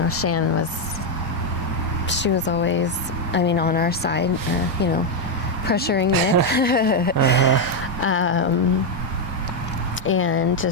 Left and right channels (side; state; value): both; normal; correlation 0.03